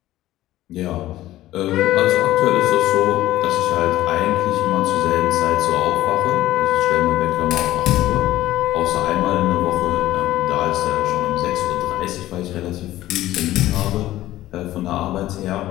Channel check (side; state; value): right; quieter; 15.0 dB